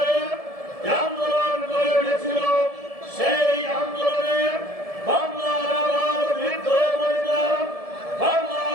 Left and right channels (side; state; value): left; late; 1.7 ms